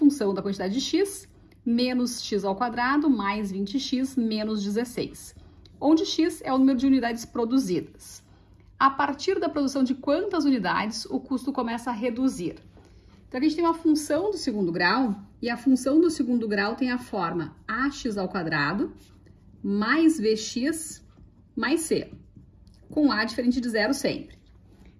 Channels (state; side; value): identical; both; correlation 1.00